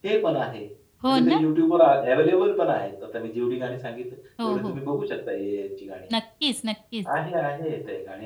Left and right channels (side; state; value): both; identical; correlation 1.00